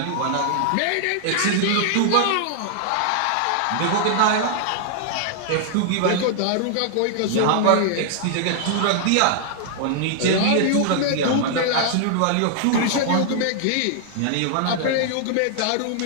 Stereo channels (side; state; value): both; different; correlation -0.01